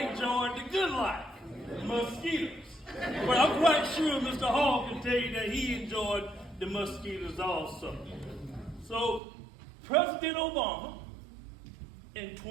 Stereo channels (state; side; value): drops out; left; at 9.2 s